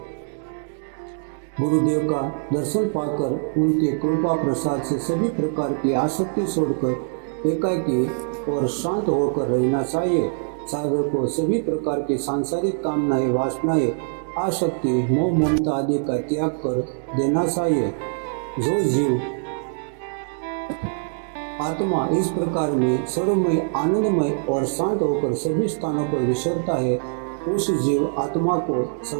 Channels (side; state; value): left; silent; digital silence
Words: गुरुदेव का दर्शन पाकर उनके कृपा प्रसाद से सभी प्रकार की आसक्ति छोड़कर एकाकी और शांत होकर रहना चाहिए। साधक को सभी प्रकार की सांसारिक कामनाएं वासनाएं आसक्ति मोह ममता आदि का त्याग कर देना चाहिए। जो जीव आत्मा इस प्रकार में सर्वमय, आनंदमय और शांत होकर सभी स्थानों पर विचरता है, उस जीव आत्मा को